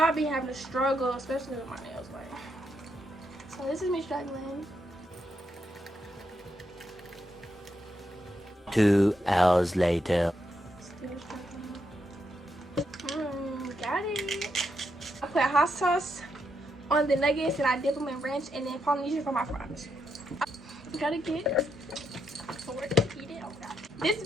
be having to struggle, especially with my nails. Like, so this is me struggling. 2 hours later. Still struggling. Got it. I put hot sauce on the nuggets and I dip them in ranch and then Polynesian for my fries. Gotta get forward to eat it. Oh God. This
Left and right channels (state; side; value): normal; both; correlation 0.81